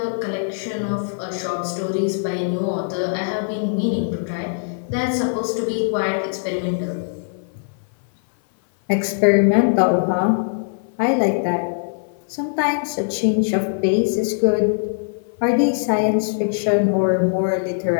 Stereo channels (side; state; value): right; silent; 58 dB below the other